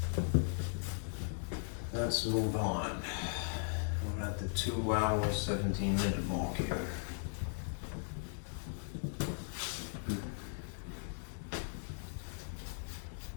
let's move on. We're at the 2 hour 17-minute mark here.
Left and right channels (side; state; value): right; silent; digital silence